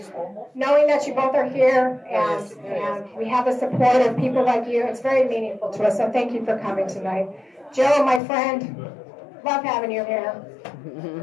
Knowing that you both are here and we have the support of people like you, it's very meaningful to us. So thank you for coming tonight. Joe, my friend, love having you here.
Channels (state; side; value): drops out; right; at 8.2 s